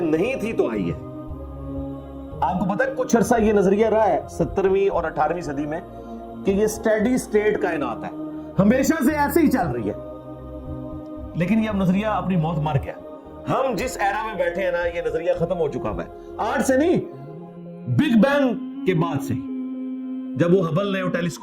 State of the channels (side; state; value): both; identical; correlation 1.00